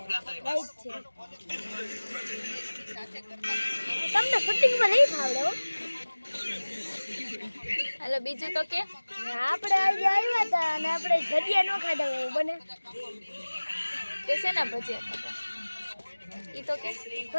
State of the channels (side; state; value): both; inverted; correlation -1.00